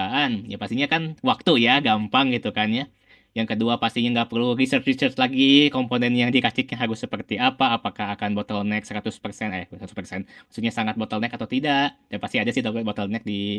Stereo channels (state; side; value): identical; both; correlation 1.00